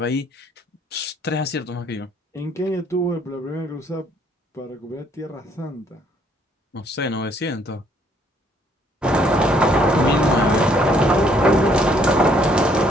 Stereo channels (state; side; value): normal; both; correlation 0.65